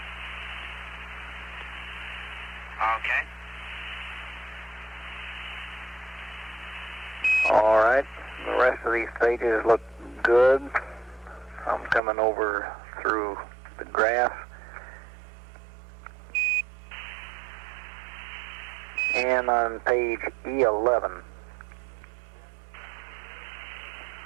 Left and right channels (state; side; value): drops out; left; at 12.0 s